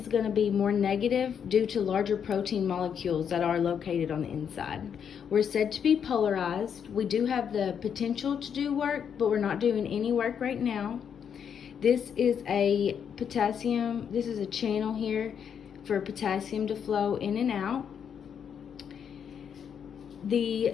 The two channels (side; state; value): right; quieter; 7.8 dB